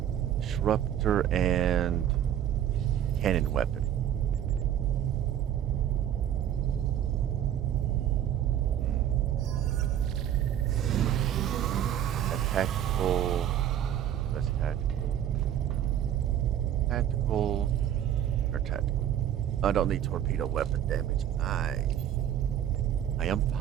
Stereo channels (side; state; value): left; quieter; 10.5 dB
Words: Disruptor and cannon weapon. Tactical. That's tactical. Tactical. Or tactical. I don't need torpedo weapon damage. I am